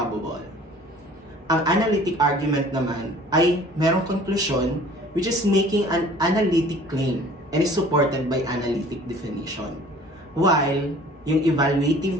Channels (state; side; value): normal; both; correlation 0.50